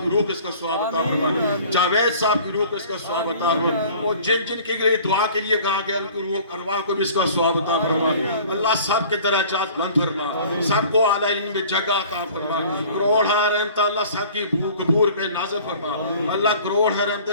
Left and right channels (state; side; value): inverted; both; correlation -0.47